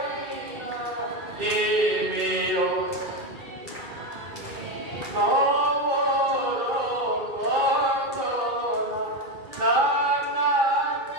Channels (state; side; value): late; left; 2.3 ms